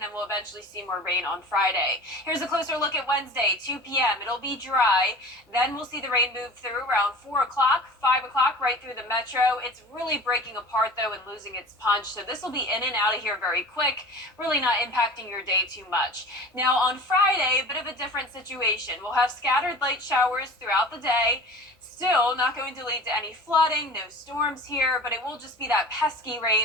then we'll eventually see more rain on Friday. Here's a closer look at Wednesday, 2 p.m. It'll be dry. Then we'll see the rain move through around 4 o'clock, 5 o'clock, right through the metro. It's really breaking apart, though, and losing its punch. So this will be in and out of here very quick, really not impacting your day too much. Now, on Friday, a bit of a different situation. We'll have scattered light showers throughout the day. Still not going to lead to any flooding, no storms here, but it will just be that pesky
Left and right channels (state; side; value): normal; both; correlation 0.39